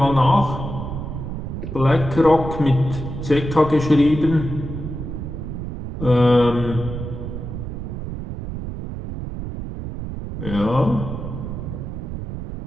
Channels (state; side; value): noise; right; rumble, 7 dB below the sound